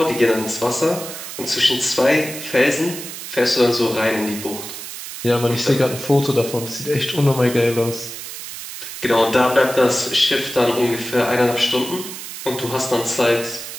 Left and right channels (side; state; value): right; noise; hiss, 10 dB below the sound